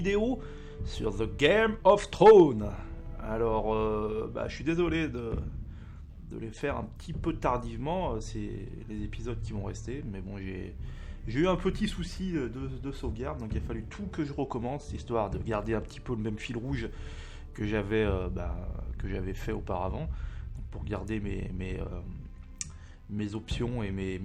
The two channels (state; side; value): identical; both; correlation 1.00